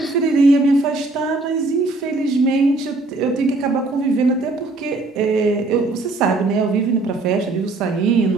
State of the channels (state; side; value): quieter; left; 3.2 dB